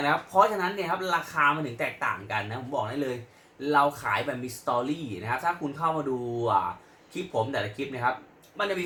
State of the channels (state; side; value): identical; both; correlation 1.00